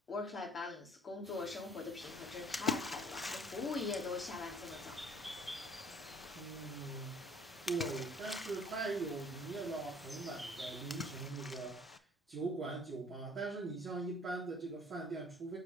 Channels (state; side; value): normal; both; correlation 0.54